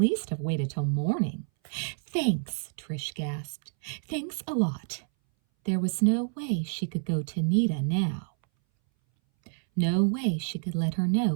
have waited till morning. Thanks, Trish gasped. Thanks a lot. There was no way she could go to Nita now. No way she could let her know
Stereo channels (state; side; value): silent; left; 59 dB below the other